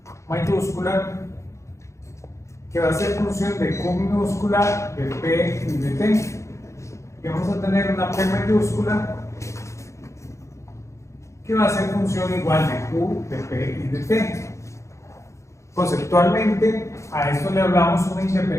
mayúscula, que va a ser función de Q minúscula, de P y de T. Y vamos a tener una P mayúscula que va a ser función igual de Q, de P y de T. Conceptualmente, a esto le hablamos una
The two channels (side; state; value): right; late; 0.14 ms